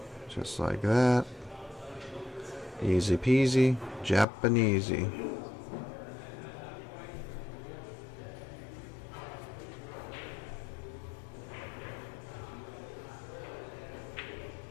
Just like that. Easy peasy, Japanesey.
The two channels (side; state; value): right; drops out; at 4.2 s